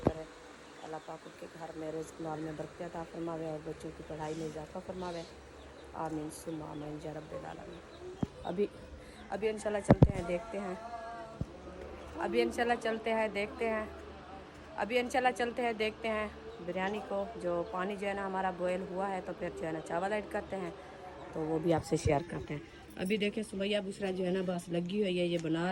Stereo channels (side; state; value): both; identical; correlation 1.00